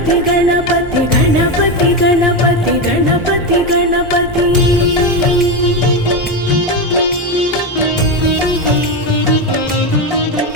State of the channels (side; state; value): both; normal; correlation 0.13